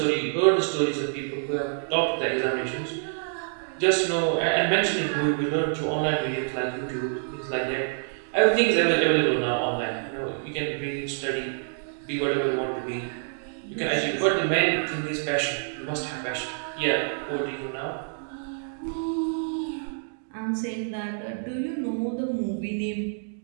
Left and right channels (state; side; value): silent; left; digital silence